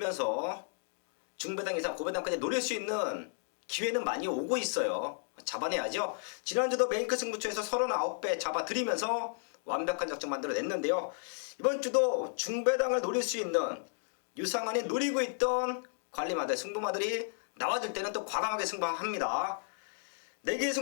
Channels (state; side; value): silent; right; digital silence